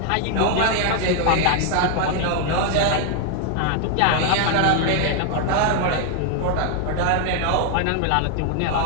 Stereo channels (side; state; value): both; different; correlation 0.00